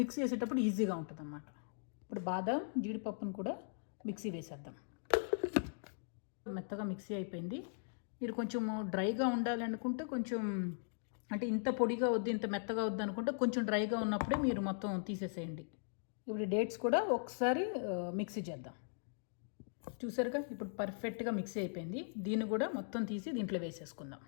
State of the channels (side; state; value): right; silent; digital silence